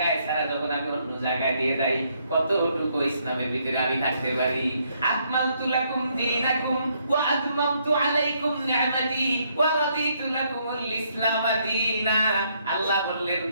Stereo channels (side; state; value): both; inverted; correlation -0.72